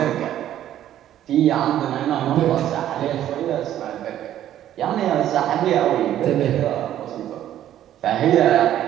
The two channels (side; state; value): left; quieter; 11.8 dB